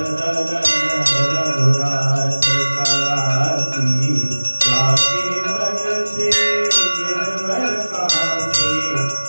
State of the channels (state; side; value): inverted; both; correlation -1.00